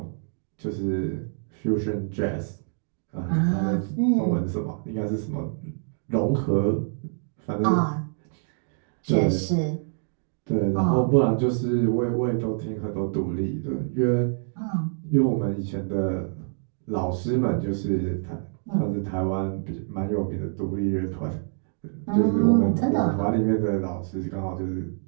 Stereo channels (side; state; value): left; silent; digital silence